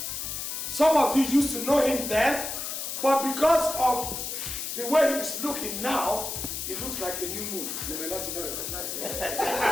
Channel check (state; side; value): noise; left; hiss, 4 dB below the sound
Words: Some of you used to know him then, but because of the way he's looking now, he looks like a new moon. You may not even recognize him.